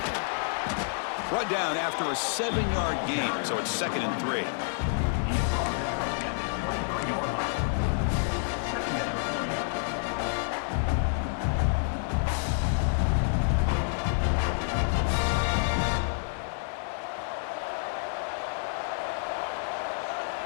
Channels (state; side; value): silent; right; 59 dB below the other